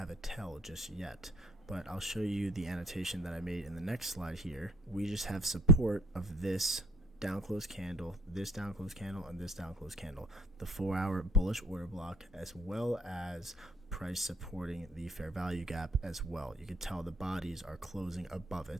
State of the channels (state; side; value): normal; both; correlation 0.57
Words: a tell just yet. But I'll show you the annotation that I made in the next slide here. We just have support of this down close candle, this down close candle, and this down close candle, the 4-hour bullish order block, as well as price supporting the fair value gap as well. You can tell the bodies are closing above